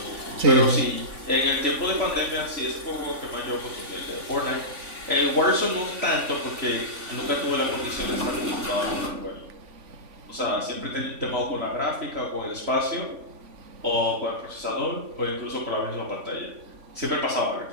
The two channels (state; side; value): late; left; 3.5 ms